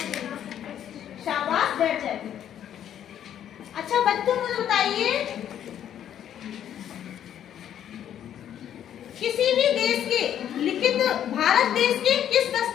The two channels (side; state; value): right; quieter; 10.2 dB